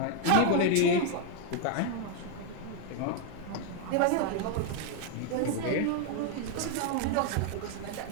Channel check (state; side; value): different; both; correlation 0.01